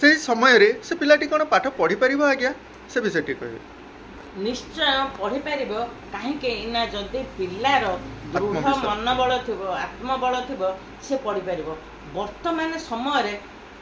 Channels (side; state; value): both; identical; correlation 1.00